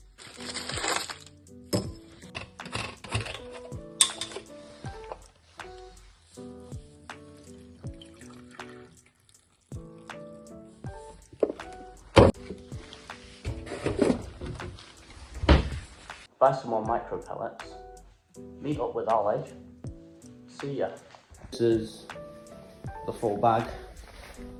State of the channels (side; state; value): both; identical; correlation 1.00